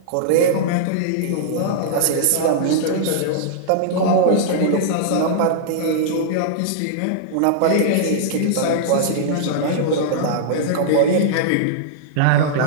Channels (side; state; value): both; different; correlation -0.02